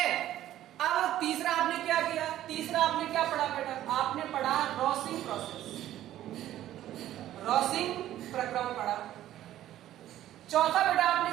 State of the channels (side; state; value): left; quieter; 13.0 dB